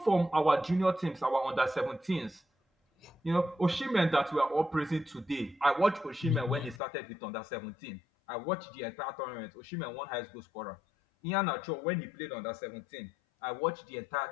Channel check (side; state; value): right; drops out; at 6.8 s